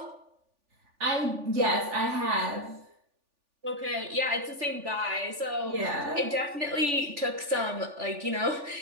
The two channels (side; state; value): left; late; 3.4 ms